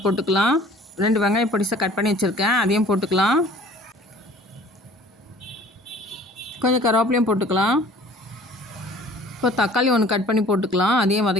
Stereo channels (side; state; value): both; normal; correlation 0.50